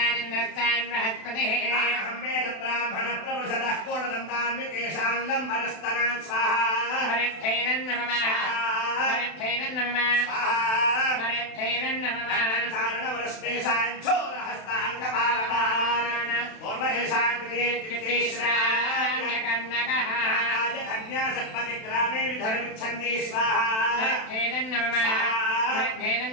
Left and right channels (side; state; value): right; late; 32 ms